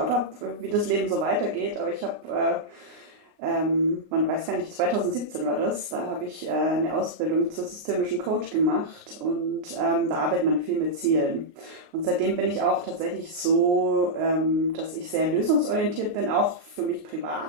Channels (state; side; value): late; left; 29 ms